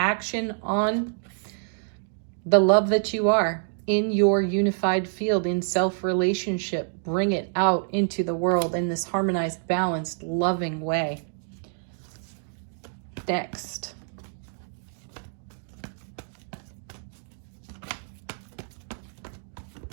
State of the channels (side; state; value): left; silent; digital silence